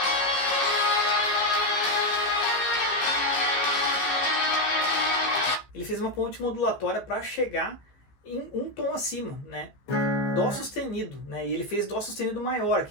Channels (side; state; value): right; late; 15 ms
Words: Ele fez uma ponte modulatória para chegar em um tom acima, né? Dó sustenido, né? E ele fez Dó sustenido maior,